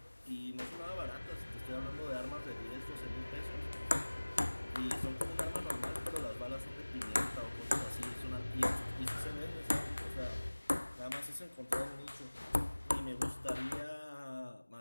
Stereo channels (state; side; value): inverted; both; correlation -1.00